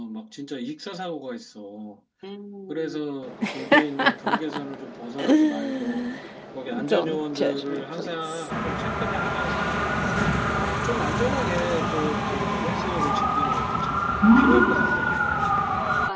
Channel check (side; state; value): both; identical; correlation 1.00